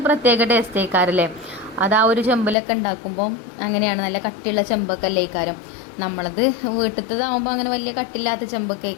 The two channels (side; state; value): right; drops out; at 2.6 s